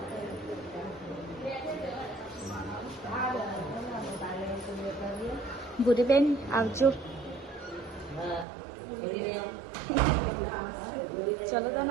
ભૂરીબેન આવજો ચલો તો ને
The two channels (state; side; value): drops out; left; at 8.5 s